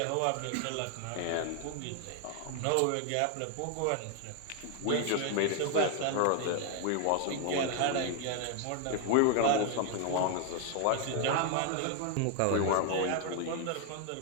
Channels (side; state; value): both; different; correlation 0.00